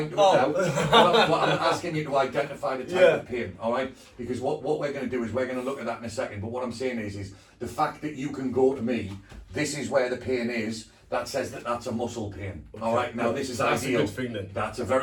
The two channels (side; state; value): both; identical; correlation 1.00